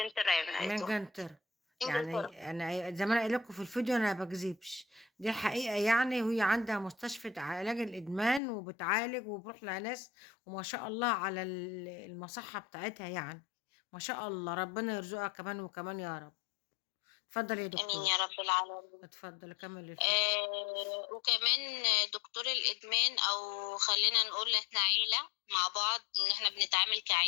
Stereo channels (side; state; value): right; drops out; at 8.4 s